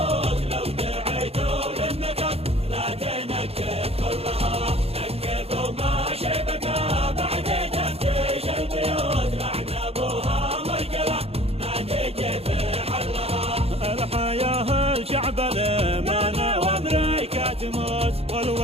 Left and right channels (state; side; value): late; left; 0.29 ms